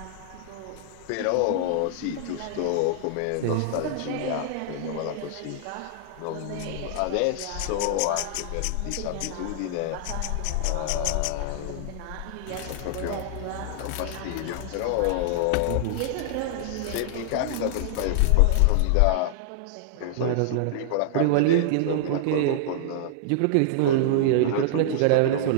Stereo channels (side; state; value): both; different; correlation -0.01